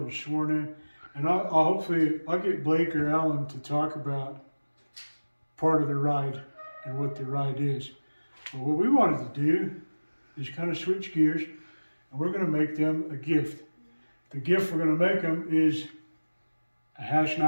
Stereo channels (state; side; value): inverted; both; correlation -1.00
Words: sworn in. And I'll get Blake or Alan to talk about part of the ride and what the ride is. But what we wanted to do is kind of switch gears, and we're going to make them a gift. The gift we're going to make them is a